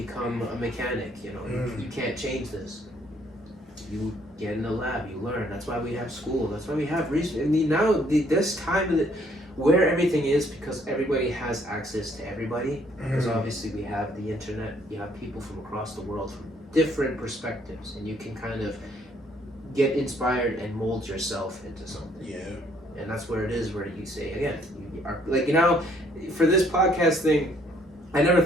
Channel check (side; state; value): both; normal; correlation 0.65